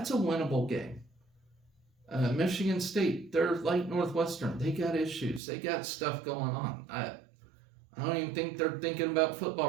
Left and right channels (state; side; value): drops out; left; at 5.4 s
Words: a winnable game. Michigan State, they're like Northwestern. They got issues. They got stuff going on. I don't even think they're thinking about